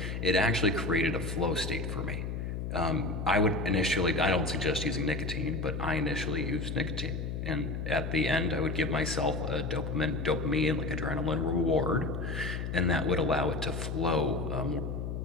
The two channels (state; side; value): noise; left; hum, 4 dB below the sound